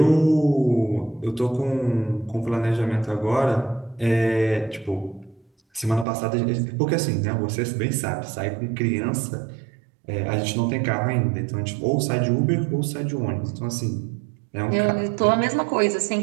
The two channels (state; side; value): drops out; left; at 6.1 s